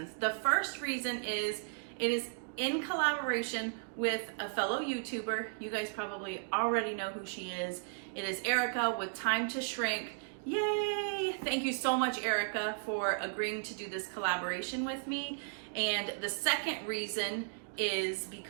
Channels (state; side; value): silent; left; digital silence